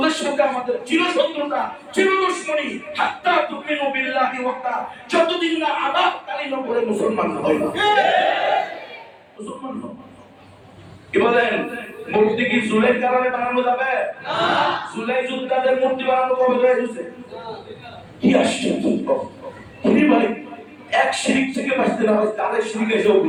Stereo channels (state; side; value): identical; both; correlation 1.00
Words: সাথে আমাদের চিরশত্রুতা, চিরদুশমনী, হাত্তা তুমিনু বিল্লাহি ওয়াহদা, যতদিন না আদাব কালিমা পড়ে মুসলমান হয় না। মুসলমান হও। কি বলেন? মূর্তি কি জুলের কারণে বানানো যাবে না? জুলাই যোদ্ধাদের মূর্তি বানানো কবে হয়েছে? কি আশ্চর্য! তিনি ভাই এক শিরিক থেকে বাঁচতে না হয় তাদের শিরিক এসে